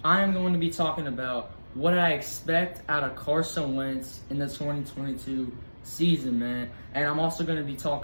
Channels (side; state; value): both; inverted; correlation -1.00